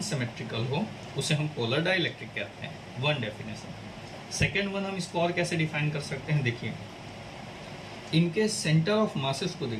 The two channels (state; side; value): identical; both; correlation 1.00